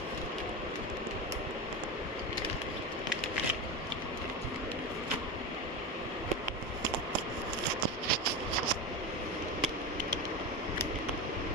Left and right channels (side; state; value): both; normal; correlation 0.19